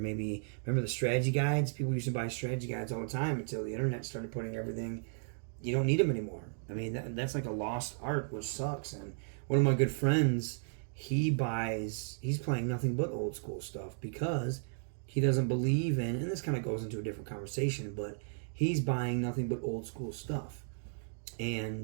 remember the strategy guides? People used to buy strategy guides all the time until the internet started putting everything, you don't need them anymore. That's like a lost art, which sucks. And one of my good friends, he's playing nothing but old school stuff because he doesn't believe in, and this kind of goes into a different conversation, but he's buying nothing but old school stuff.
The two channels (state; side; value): silent; left; digital silence